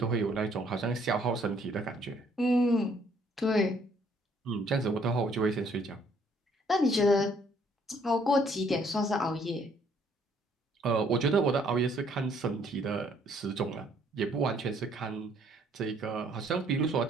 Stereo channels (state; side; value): normal; both; correlation 0.64